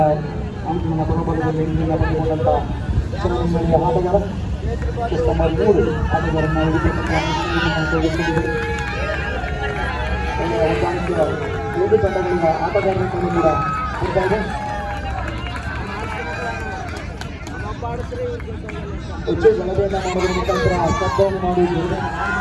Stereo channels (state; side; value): identical; both; correlation 1.00